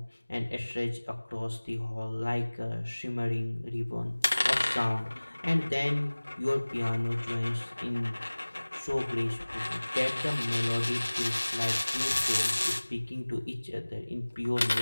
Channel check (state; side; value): inverted; both; correlation -1.00